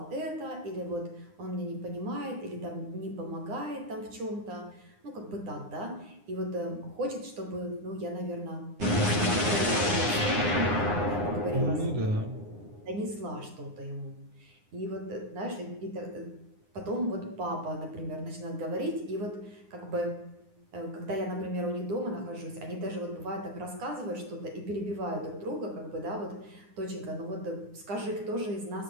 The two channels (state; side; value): late; left; 9.8 ms